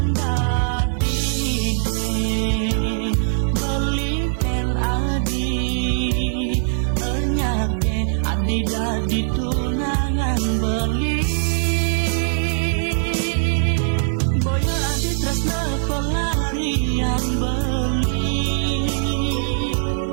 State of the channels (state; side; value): silent; left; digital silence